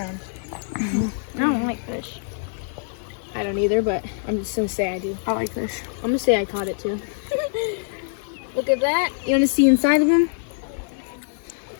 own. I don't like fish. I don't either, but I'm just gonna say I do. I like fish. I'm gonna say I caught it too. Look at that. You wanna see inside of them?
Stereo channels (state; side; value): silent; right; digital silence